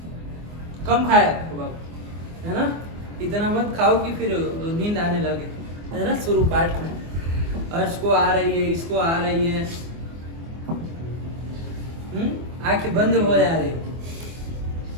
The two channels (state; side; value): late; left; 24 ms